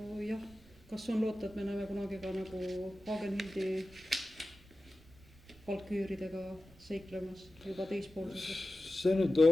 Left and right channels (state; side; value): noise; right; rumble, 26 dB below the sound